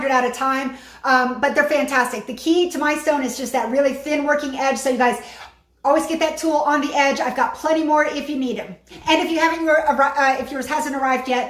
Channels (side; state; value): both; identical; correlation 1.00